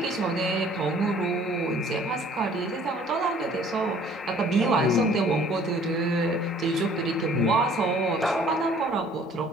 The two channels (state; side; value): normal; both; correlation 0.55